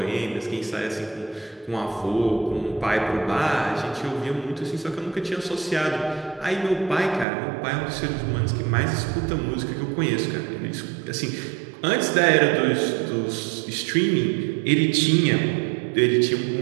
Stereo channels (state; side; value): drops out; left; at 7.2 s